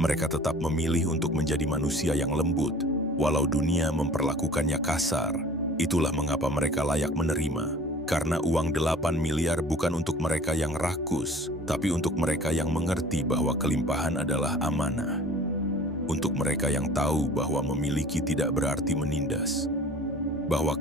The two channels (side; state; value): both; normal; correlation 0.46